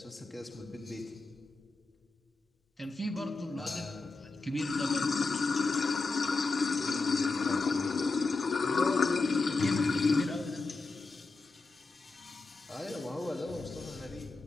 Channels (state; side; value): quieter; right; 3.7 dB